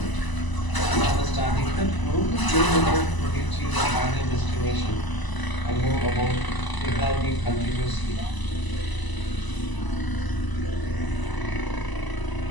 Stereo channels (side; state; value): right; late; 1.0 ms